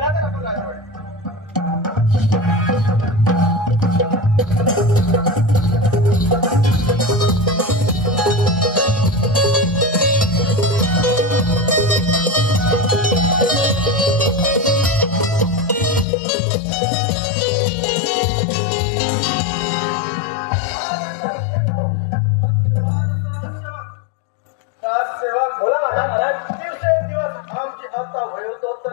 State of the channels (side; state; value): right; drops out; at 16.1 s